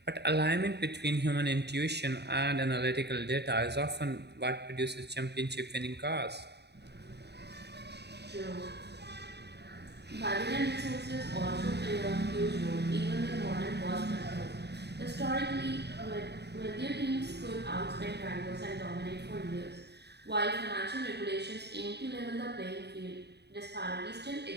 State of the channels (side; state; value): left; late; 0.49 ms